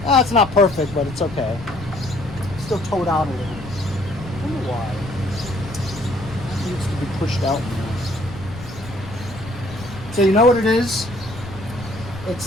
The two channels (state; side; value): noise; left; rumble, 14 dB below the sound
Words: It's not perfect, but it's okay. It's still towed out a little. I don't know why. It needs to be pushed out more. So you know what it is?